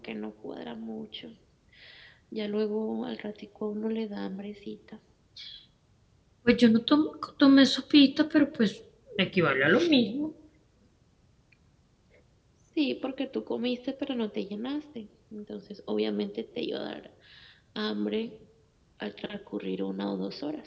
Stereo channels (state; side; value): identical; both; correlation 1.00